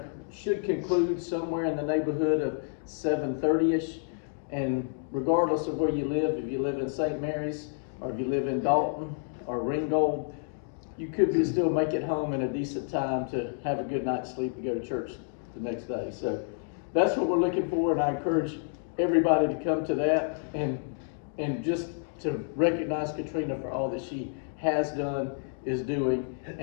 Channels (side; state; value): right; silent; digital silence